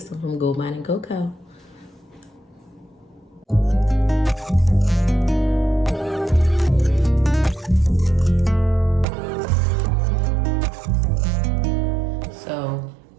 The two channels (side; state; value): left; drops out; at 9.1 s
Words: from Goldmine Coco. So